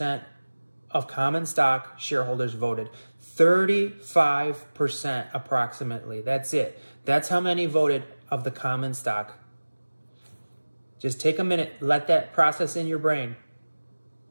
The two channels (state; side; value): inverted; both; correlation -1.00